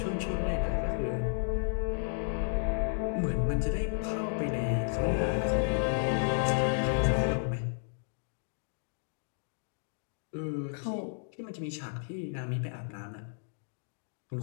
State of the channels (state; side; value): silent; right; digital silence